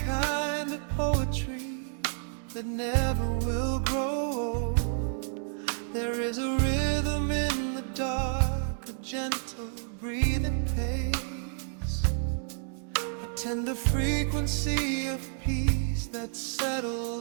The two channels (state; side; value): silent; left; digital silence